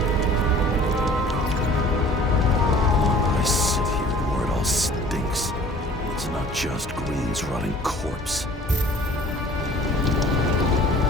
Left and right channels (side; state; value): both; normal; correlation 0.49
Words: I sit here where it all stinks. It's not just Green's rotting corpse.